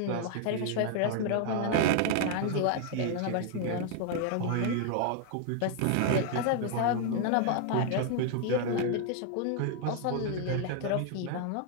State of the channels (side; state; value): both; different; correlation 0.00